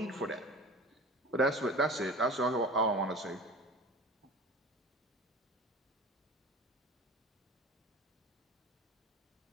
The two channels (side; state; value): both; normal; correlation 0.37